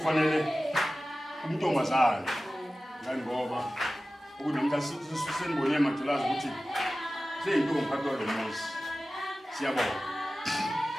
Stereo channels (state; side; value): normal; both; correlation 0.96